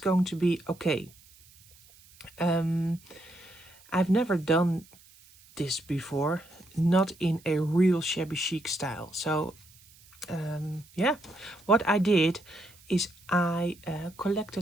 to be okay. I've never done this before, not in a real shabby chic style. So yeah, what I did is I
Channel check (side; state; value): right; noise; hiss, 26 dB below the sound